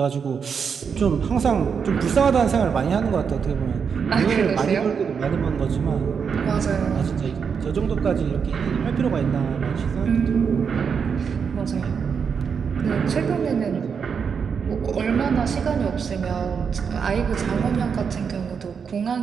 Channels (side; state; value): left; quieter; 6.4 dB